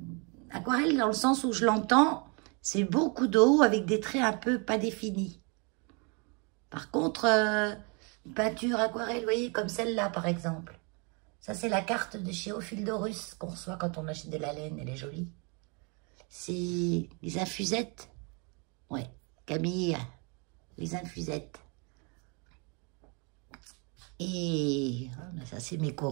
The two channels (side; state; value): left; quieter; 33.8 dB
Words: Aquarelle, dans le sens où je l'entends, c'est beaucoup d'eau avec des traits un peu pas définis. Par contre, peinture aquarelle, vous voyez, comme celle-là, par exemple. Ça, c'est la carte de chez Ophildorus qu'on reçoit quand on achète de la laine. Elle est jolie. C'est les infusettes. Ouais, Camille, les infusettes. Et ça, c'est mes